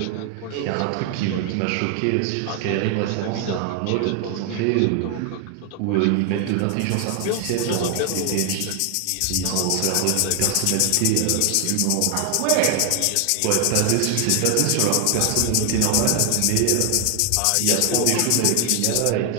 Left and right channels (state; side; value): different; both; correlation 0.00